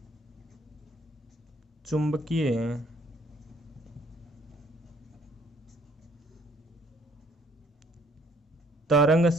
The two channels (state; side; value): normal; both; correlation 0.62